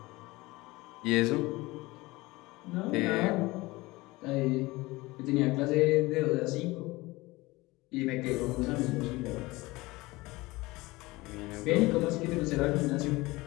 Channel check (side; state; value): right; quieter; 21.2 dB